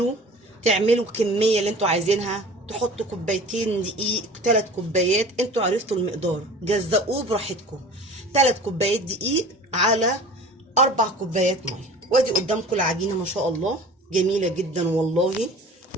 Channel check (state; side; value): normal; both; correlation 0.42